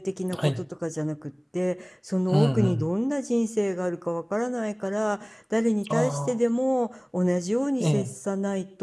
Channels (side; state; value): both; identical; correlation 1.00